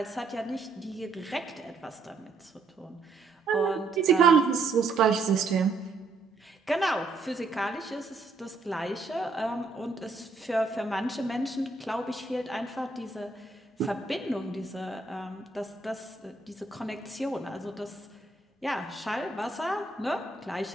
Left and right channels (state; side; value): quieter; left; 3.7 dB